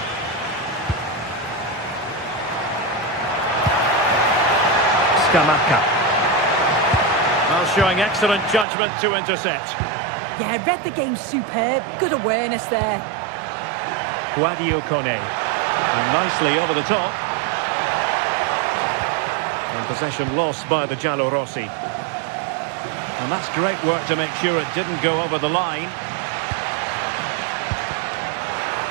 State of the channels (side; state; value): left; drops out; at 8.7 s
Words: Scamacca. Well, showing excellent judgment to intercept. Yeah, read the game superb. Good awareness there. Guadio Kone. And nicely over the top. And possession lost by the Giallorossi. And that's great work to make sure it didn't go over the line.